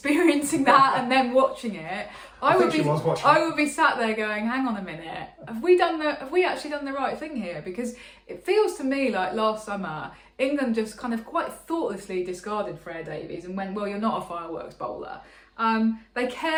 that and then watching it, I would be sat there going, hang on a minute, have we actually done the right thing here? Because it feels to me like last summer England just kind of quite thoughtlessly discarded Freya Davies and went, well, you're not a fireworks bowler. They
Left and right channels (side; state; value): both; identical; correlation 1.00